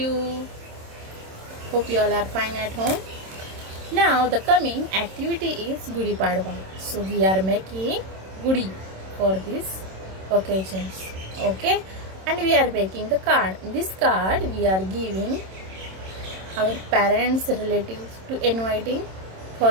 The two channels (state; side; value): late; left; 26 ms